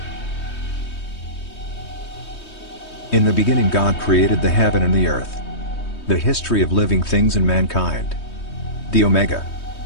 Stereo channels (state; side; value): late; right; 3.2 ms